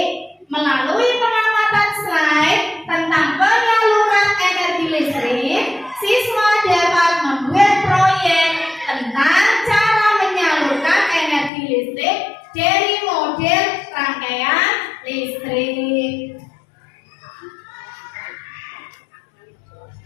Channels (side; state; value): right; drops out; at 11.5 s